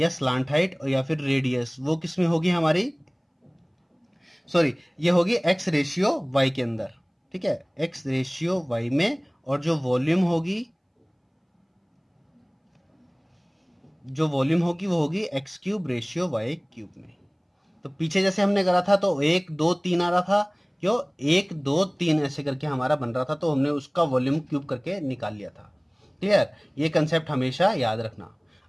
स्लांट हाइट और या फिर रेडियस, वो किस में होगी हमारी? सॉरी, ये होगी x रेशियो y के अंदर। ठीक है, x रेशियो y में, और जो वॉल्यूम होगी वो होगी x³ रेशियो y³ में। तो पीछे जैसे हमने करा था, तो 1 2 3 आ रहा था। क्यों? 1 2 3 ऐसे करके हमारा बन रहा था, तो हमने उसका वॉल्यूम क्यूब करके निकाल लिया था। क्लियर? ये कंसेप्ट हमेशा याद रखना।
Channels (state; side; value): identical; both; correlation 1.00